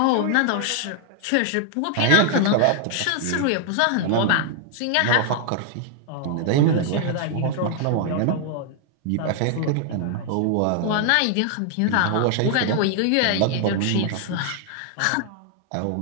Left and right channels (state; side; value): different; both; correlation 0.00